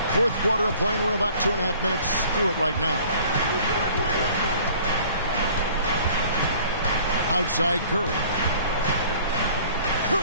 Fourth quarter of play, and we're about 2.5 minutes through it right now. Outside Curry.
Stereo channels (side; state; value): both; inverted; correlation -0.52